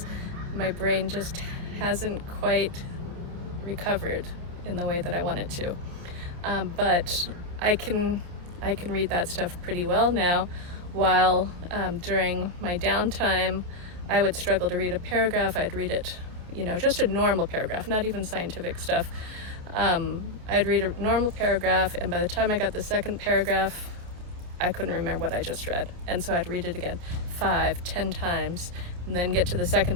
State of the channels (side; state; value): left; late; 28 ms